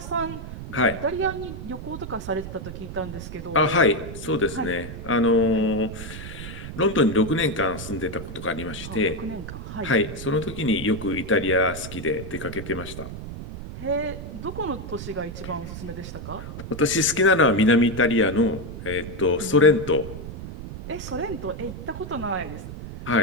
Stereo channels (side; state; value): right; noise; rumble, 10 dB below the sound